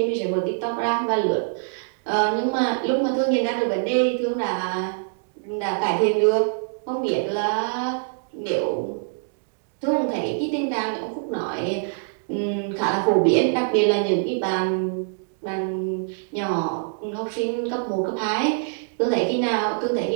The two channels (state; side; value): silent; left; digital silence